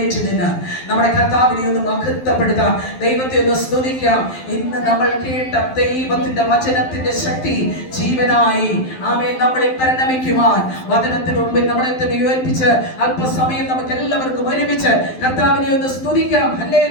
നിന്ന് നമ്മുടെ കർത്താവിനെ ഒന്ന് മഹത്വപ്പെടുത്താം, ദൈവത്തെ ഒന്ന് സ്തുതിക്കാം. ഇന്ന് നമ്മൾ കേട്ട ദൈവത്തിന്റെ വചനത്തിന്റെ ശക്തി ജീവനായി നമ്മളിൽ പരിണമിക്കുവാൻ വചനത്തിന് മുമ്പിൽ നമ്മളെ തന്നെ ഉയർപ്പിച്ച് അല്പസമയം നമുക്ക് എല്ലാവർക്കും ഒരുമിച്ച് കർത്താവിനെ ഒന്ന് സ്തുതിക്കാം.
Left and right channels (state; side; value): late; right; 12 ms